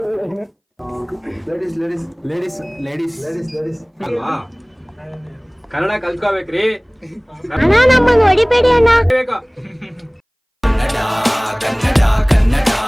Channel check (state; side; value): identical; both; correlation 1.00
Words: ಲೇಡೀಸ್ ಅಲ್ವಾ ಕನ್ನಡ ಕಲ್ತ್ಕೋಬೇಕ್ರಿ. ಅಣ್ಣ ನಮ್ಮನ್ನು ಹೊಡಿಬೇಡಿ ಅಣ್ಣ.